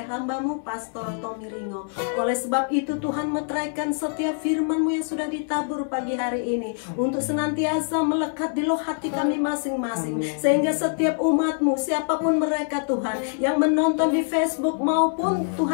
hamba-Mu Pastor Tommy Ringo. Oleh sebab itu Tuhan, meteraikan setiap firman-Mu yang sudah ditabur pagi hari ini untuk senantiasa melekat di loh hati kami masing-masing. Sehingga setiap umat-Mu, siapapun mereka Tuhan, yang menonton di Facebook maupun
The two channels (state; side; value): silent; right; 62 dB below the other